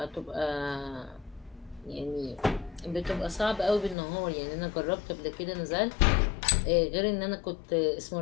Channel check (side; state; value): right; drops out; at 4.0 s